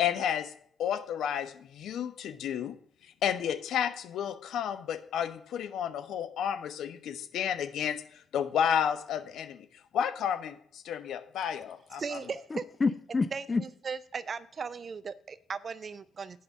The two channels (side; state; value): right; quieter; 6.2 dB